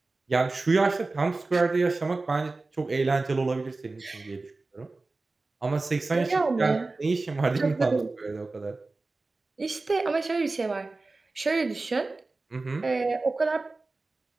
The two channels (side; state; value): left; quieter; 3.4 dB